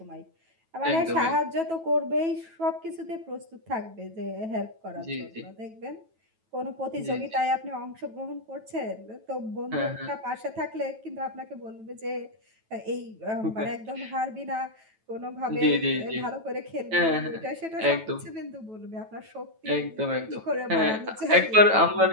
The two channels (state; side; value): late; left; 9.1 ms